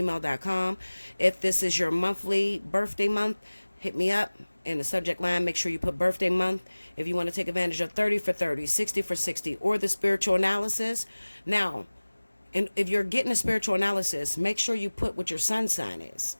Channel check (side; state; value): both; inverted; correlation -1.00